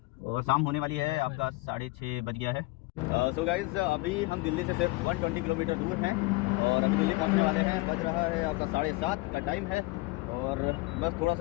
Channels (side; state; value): right; quieter; 22.9 dB